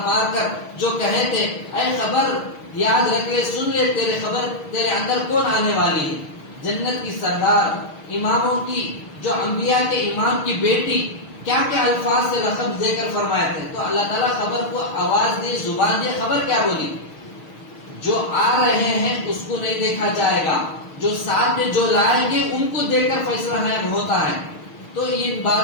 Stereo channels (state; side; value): late; right; 6.5 ms